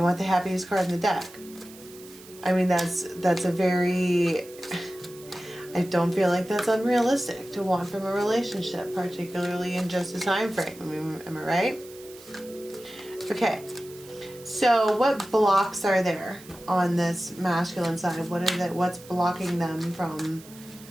the happiest card in the deck. I mean, that's a very... I don't feel like that's unrealistic to want from a relationship, particularly in just a time frame. I mean, am I right? Okay. So what blocks are there on this masculine side? What's blocking them from,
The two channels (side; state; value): right; noise; hiss, 20 dB below the sound